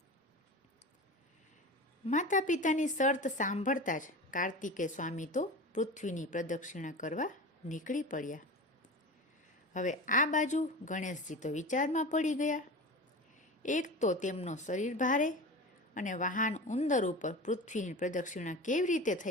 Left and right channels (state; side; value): normal; both; correlation 0.31